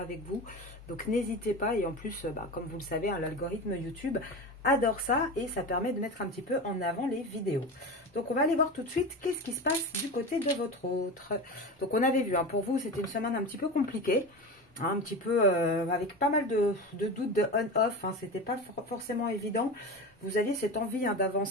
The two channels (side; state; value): both; normal; correlation 0.26